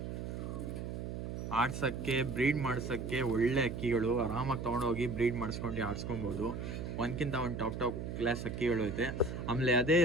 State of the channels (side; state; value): right; noise; hum, 5 dB below the sound